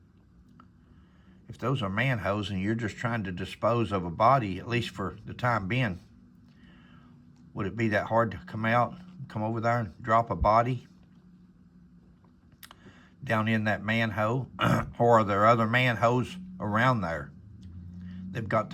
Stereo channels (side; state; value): both; identical; correlation 1.00